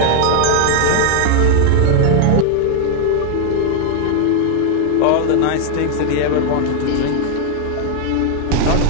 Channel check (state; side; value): different; both; correlation 0.00